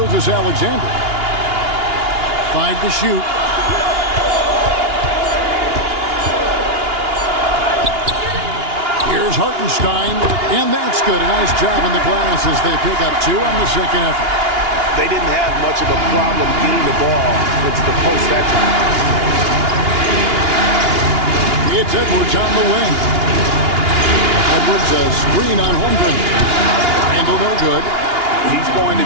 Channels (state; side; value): late; left; 2.8 ms